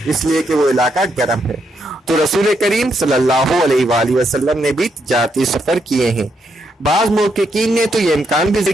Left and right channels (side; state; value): both; normal; correlation 0.78